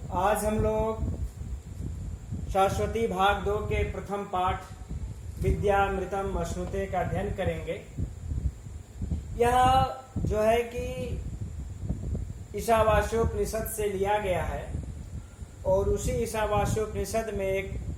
आज हम लोग शाश्वती भाग 2 के प्रथम पाठ विद्यामृतम अश्नुते का अध्ययन करेंगे। यह जो है कि ईशावास्योपनिषद से लिया गया है और उसी ईशावास्योपनिषद में एक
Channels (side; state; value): both; identical; correlation 1.00